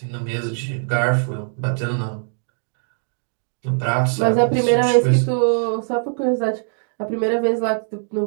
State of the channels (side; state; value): left; silent; digital silence